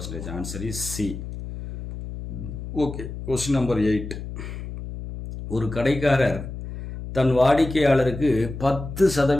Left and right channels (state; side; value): noise; left; hum, 9 dB below the sound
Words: Answer is C. Okay. Question number 8. ஒரு கடைக்காரர் தன் வாடிக்கையாளருக்கு